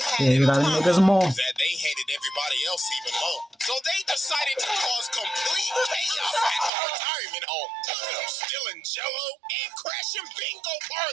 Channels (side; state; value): left; drops out; at 6.7 s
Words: had in common is that they hated everybody else even more. So they decided to cause complete chaos at the retirement home. Look at them stealing jello and crashing bingo